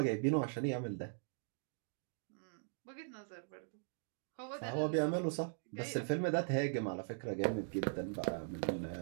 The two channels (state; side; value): silent; left; digital silence